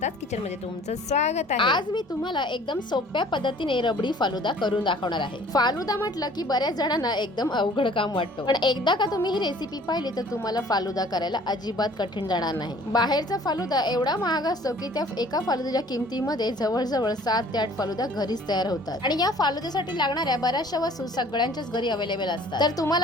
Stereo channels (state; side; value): normal; both; correlation 0.52